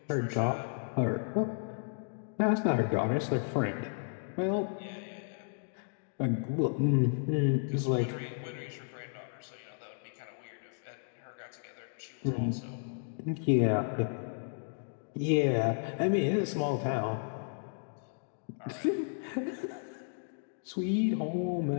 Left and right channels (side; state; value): right; silent; digital silence